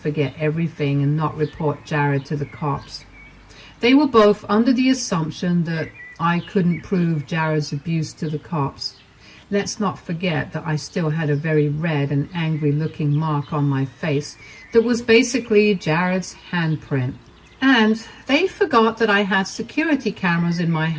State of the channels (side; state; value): both; identical; correlation 1.00